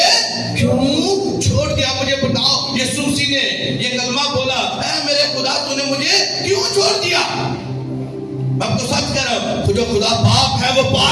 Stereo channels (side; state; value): both; identical; correlation 1.00